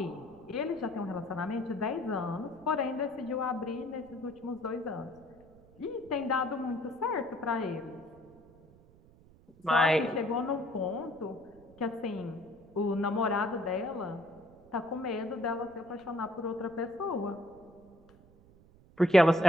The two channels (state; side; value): noise; right; rumble, 25 dB below the sound